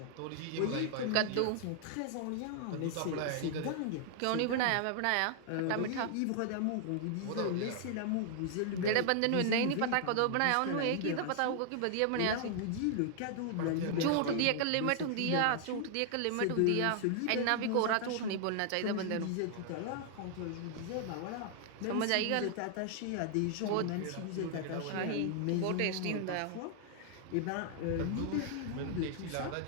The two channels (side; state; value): both; different; correlation 0.00